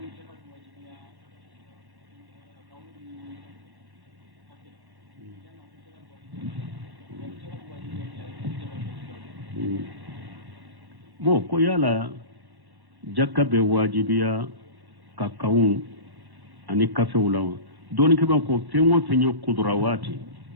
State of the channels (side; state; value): left; late; 1.1 ms